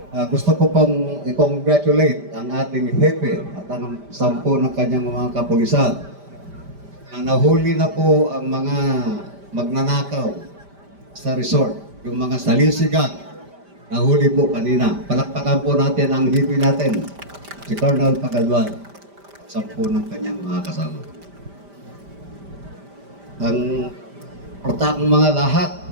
Gusto ko pong i-congratulate ang ating hepe at ang 10 ng kanyang mga kapulisan na nahuli na po ang mga magnanakaw sa resort, yung mga salisigan. Nahuli po kanina. Palakpakan po natin ang hepe natin, si Colonel Pagalwan, 10 ng kanyang mga kasama. Ang mga lahat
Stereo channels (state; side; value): late; left; 5.0 ms